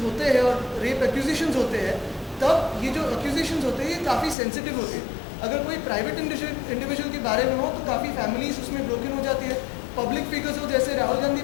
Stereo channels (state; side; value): drops out; right; at 4.4 s